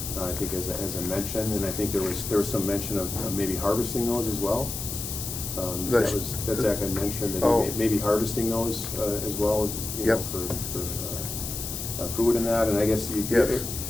I think as I mentioned, and I think there was some mention of maybe harvesting those as well. That Zach had mentioned that he may be harvesting those as well, for food and that. And I guess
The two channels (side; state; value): left; noise; hiss, 6 dB below the sound